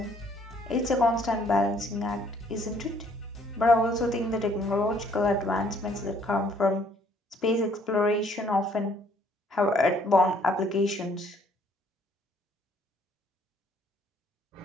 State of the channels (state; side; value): normal; both; correlation 0.63